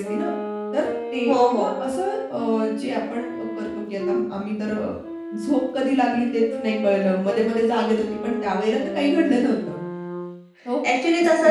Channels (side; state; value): both; identical; correlation 1.00